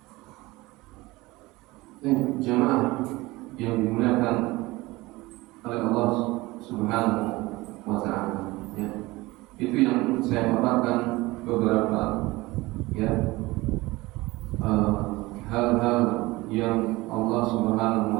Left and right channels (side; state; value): left; quieter; 20.7 dB